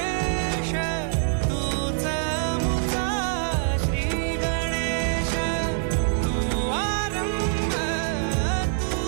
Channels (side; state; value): left; silent; 61 dB below the other